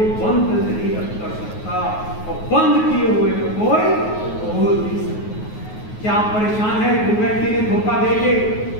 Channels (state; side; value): late; right; 9.4 ms